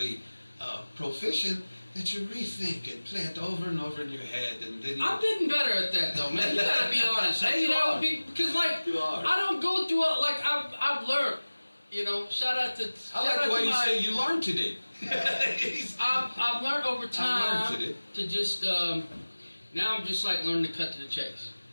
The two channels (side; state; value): both; inverted; correlation -1.00